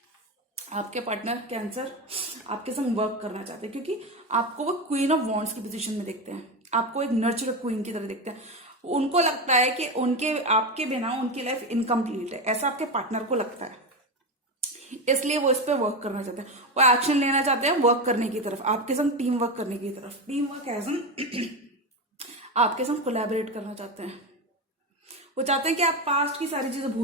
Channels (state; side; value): normal; both; correlation 0.16